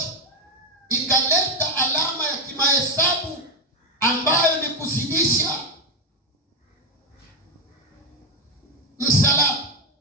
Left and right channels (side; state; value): both; normal; correlation 0.10